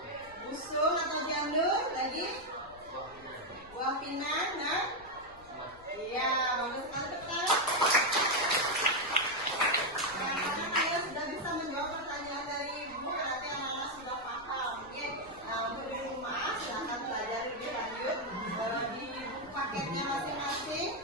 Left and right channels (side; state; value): left; noise; rumble, 23 dB below the sound